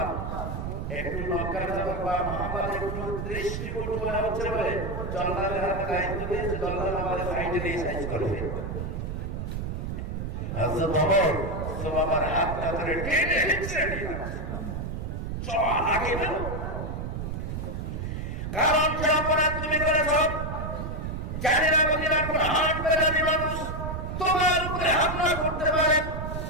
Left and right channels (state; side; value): noise; right; rumble, 4 dB below the sound